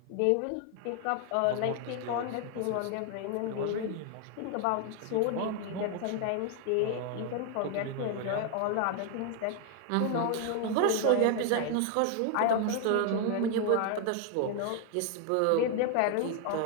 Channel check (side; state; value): both; different; correlation 0.00